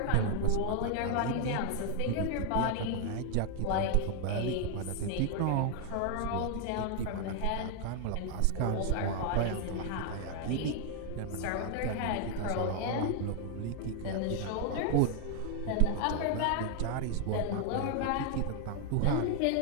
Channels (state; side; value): different; both; correlation 0.00